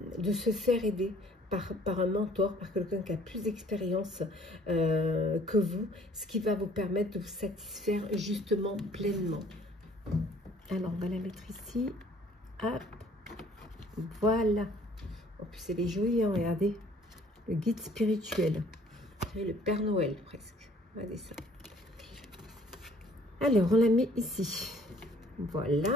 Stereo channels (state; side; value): normal; both; correlation 0.57